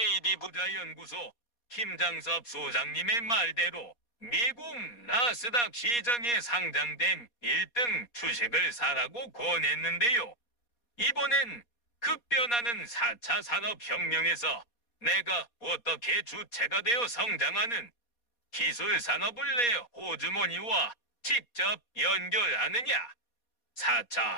부자연구소 김장섭 소장님의 말대로 미국 나스닥 시장에 상장된 1등 주식을 사라고 권했는데요. 이번엔 급변하는 4차 산업혁명에서 내가 어떻게 주체가 되어 성장하는 기술산업을 내 호주머니와 직접 연결하느냐.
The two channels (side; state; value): right; late; 4.2 ms